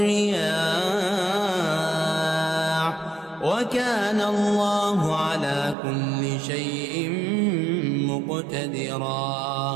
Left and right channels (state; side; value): drops out; left; at 5.8 s